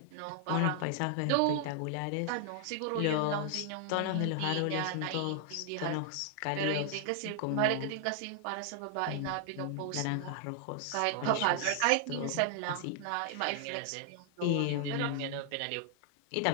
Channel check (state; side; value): different; both; correlation 0.00